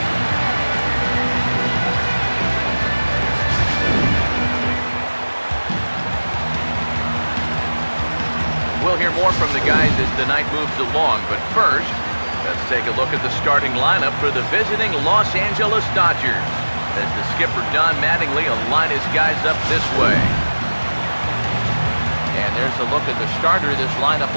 We'll hear more from the guys as the night moves along, but first, let's take a look at the starting lineup for the visiting Los Angeles Dodgers, as the skipper Don Mattingly will line his guys up this way. And there's a look at the starter this lineup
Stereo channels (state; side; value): inverted; both; correlation -1.00